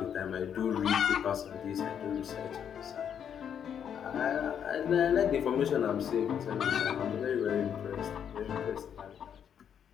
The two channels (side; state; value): right; quieter; 8.4 dB